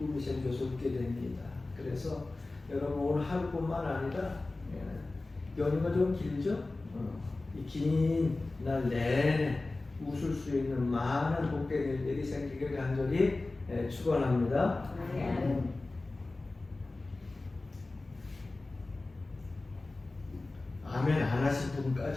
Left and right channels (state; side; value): quieter; right; 3.2 dB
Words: 생겨서 웃게 됩니다. 그래서 여러분 오늘 하루뿐만 아니라 연휴가 좀 길죠? 이 긴 날 내내 웃을 수 있는 많은 복된 일들이 생기길 간절히 축원합니다. 아멘 안 하신